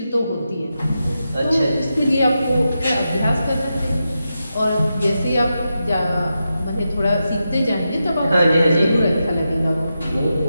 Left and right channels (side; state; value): both; inverted; correlation -0.88